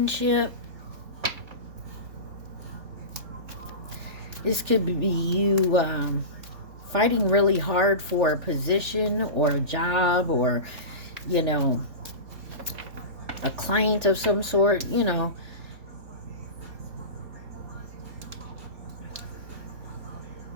This could be you fighting really hard for a position or a job, or, you know, a client of some sort, you know.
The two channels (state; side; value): late; left; 3.4 ms